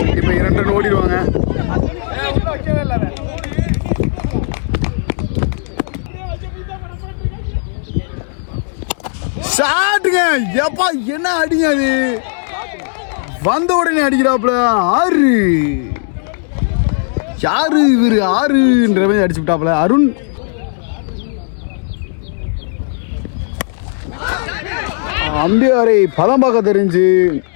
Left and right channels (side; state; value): right; silent; 69 dB below the other